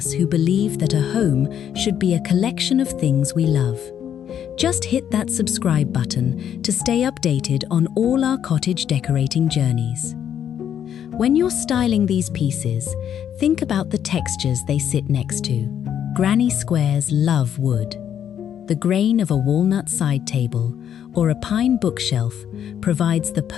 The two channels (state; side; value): quieter; right; 9.3 dB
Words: who believe that a home should be a collection of things we love. Just hit that subscribe button to stay updated on all our cottage decorating journeys. When you're styling these pieces, think about the textures they sit next to. Granny squares love wood. The grain of a walnut side table, or a pine bookshelf provides the